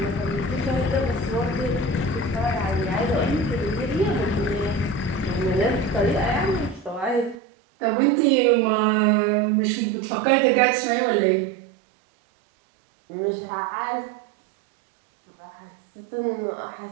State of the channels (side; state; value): left; drops out; at 7.4 s